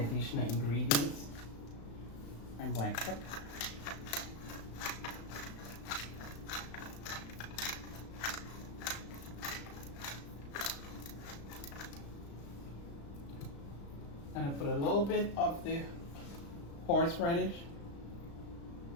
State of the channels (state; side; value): late; right; 35 ms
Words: ingredients. And black pepper. I'm going to put a little bit of the horseradish.